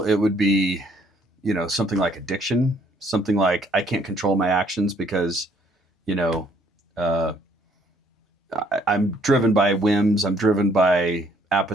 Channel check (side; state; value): both; normal; correlation 0.64